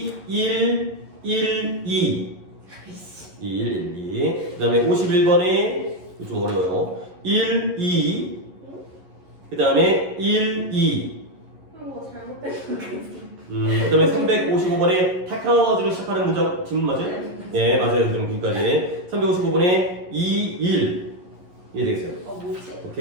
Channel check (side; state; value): left; late; 11 ms